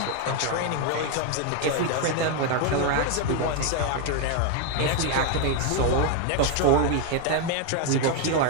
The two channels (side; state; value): both; different; correlation 0.01